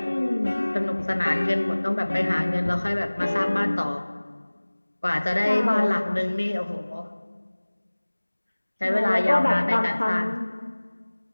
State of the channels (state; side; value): inverted; both; correlation -1.00